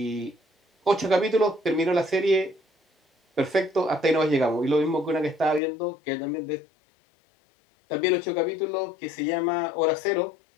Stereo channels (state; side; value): drops out; right; at 5.6 s